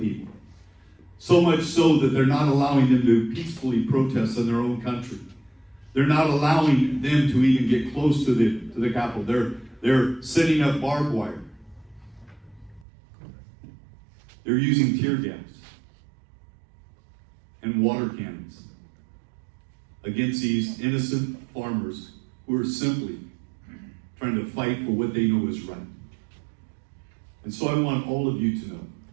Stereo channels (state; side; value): drops out; left; at 12.9 s